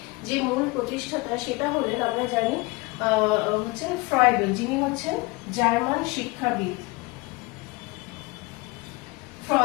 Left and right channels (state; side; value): quieter; right; 24.1 dB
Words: যে মূল প্রতিষ্ঠাতা সেটা হলেন, আমরা জানি হচ্ছেন ফ্রয়েডেল, যিনি হচ্ছেন জার্মান শিক্ষাবিদ।